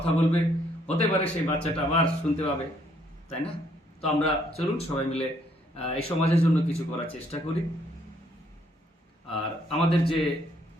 বলবে, হতে পারে সেই বাচ্চাটা আবার শুনতে পাবে, তাই না? তো আমরা চলুন সবাই মিলে এই সমাজের জন্য কিছু করার চেষ্টা করি। আর আমাদের যে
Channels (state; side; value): normal; both; correlation 0.68